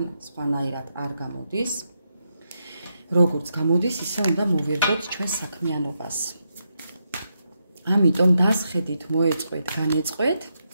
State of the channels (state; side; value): inverted; both; correlation -0.83